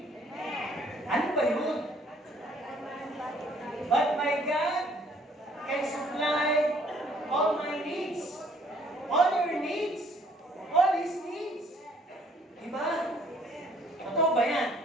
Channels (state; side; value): normal; both; correlation 0.62